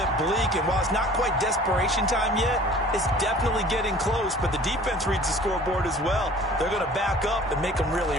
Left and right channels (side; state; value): both; normal; correlation 0.48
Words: bleak. And while it's not quite desperation time yet, it's definitely getting close. But the defense reads the scoreboard as well. They're going to back up and make them